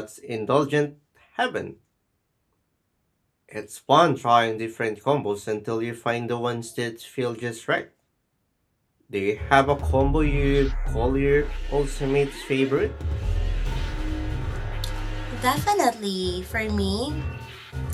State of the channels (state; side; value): identical; both; correlation 1.00